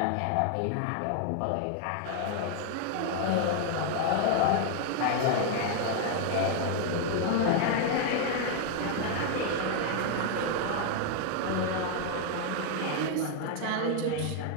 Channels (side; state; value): both; different; correlation 0.00